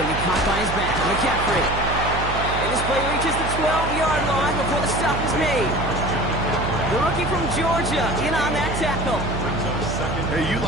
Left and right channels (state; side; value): noise; right; hum, 5 dB below the sound